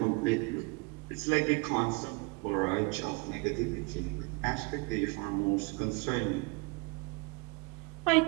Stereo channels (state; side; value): quieter; left; 27.6 dB